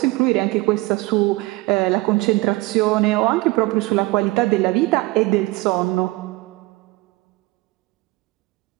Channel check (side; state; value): left; quieter; 21.3 dB